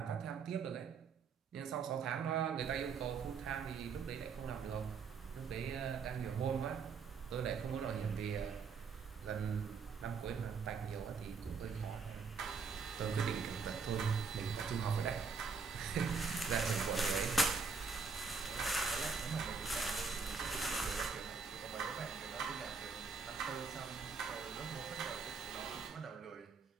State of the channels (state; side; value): quieter; left; 5.2 dB